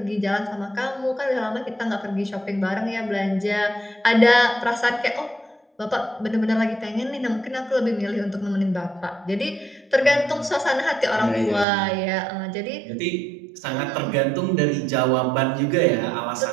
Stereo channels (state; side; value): drops out; left; at 11.7 s